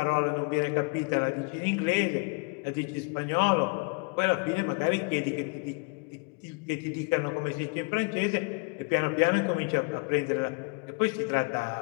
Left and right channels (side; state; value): right; quieter; 33.9 dB